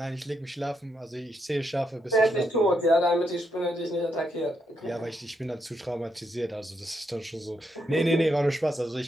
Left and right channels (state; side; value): normal; both; correlation 0.79